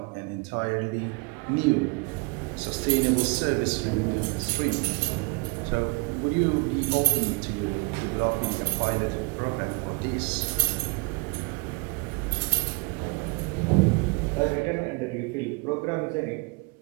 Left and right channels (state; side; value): quieter; left; 29.1 dB